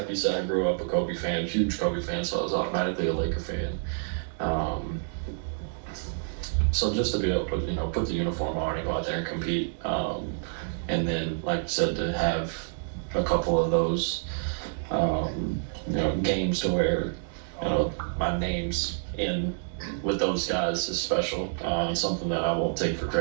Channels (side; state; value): left; silent; digital silence